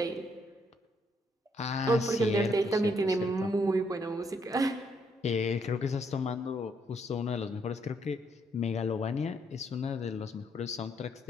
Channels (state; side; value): normal; both; correlation 0.72